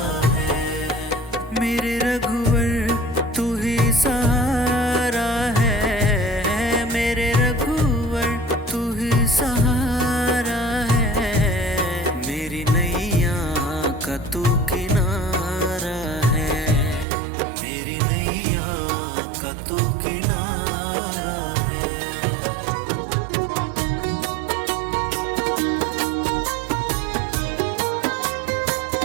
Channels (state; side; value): drops out; left; at 17.1 s